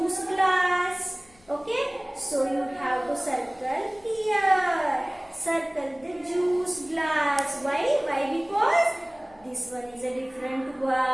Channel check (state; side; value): noise; left; hum, 29 dB below the sound